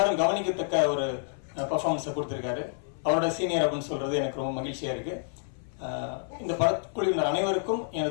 கவனிக்கத்தக்க ஒரு பர்ஃபார்மன்ஸை கொடுத்திருக்காரு. அவரோட சீனியர் அப்படின்னு சொல்றது எனக்கு ரொம்ப மகிழ்ச்சியா இருக்கு. இந்த படக்குழுவினர் அனைவருக்கும்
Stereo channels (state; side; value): silent; right; 55 dB below the other